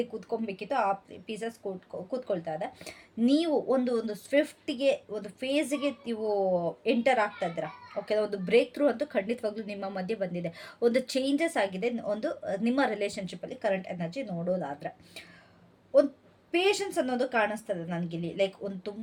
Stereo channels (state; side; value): identical; both; correlation 1.00